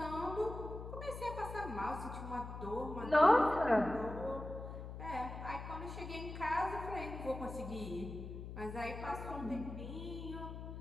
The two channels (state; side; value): noise; left; hum, 8 dB below the sound